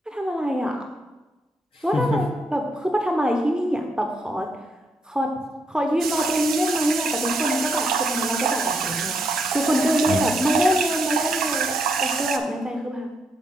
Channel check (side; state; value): both; normal; correlation 0.77